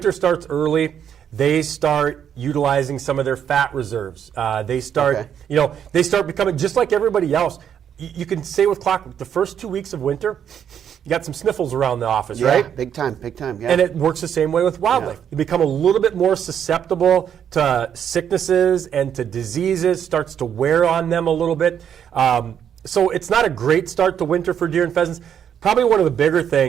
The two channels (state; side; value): quieter; left; 8.8 dB